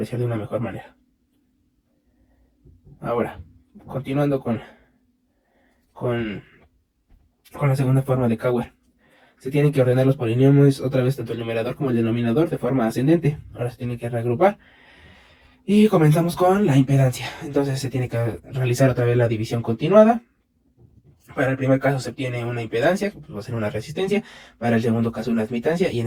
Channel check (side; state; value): both; identical; correlation 1.00